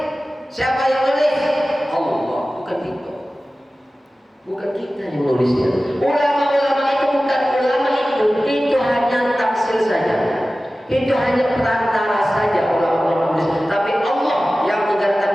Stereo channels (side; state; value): both; normal; correlation 0.96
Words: Siapa yang nulis? Allah, bukan kita yang nulisnya. Ulama-ulama itu bukan ulama itu hanya tafsir saja. Itu hanya perantara saja ulama-ulama nulis. Tapi Allah yang